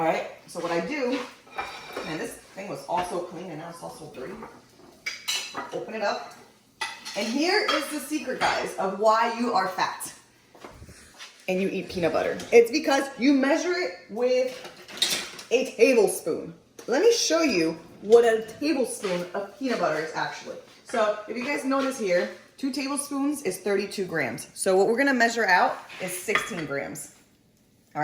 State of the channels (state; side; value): identical; both; correlation 1.00